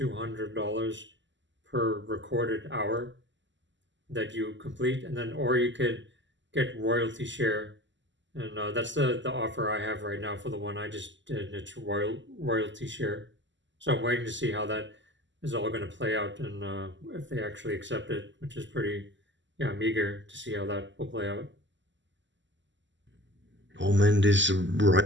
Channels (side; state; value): left; late; 0.54 ms